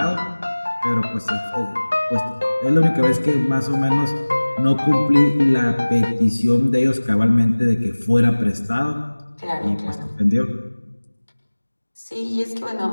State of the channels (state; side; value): inverted; both; correlation -1.00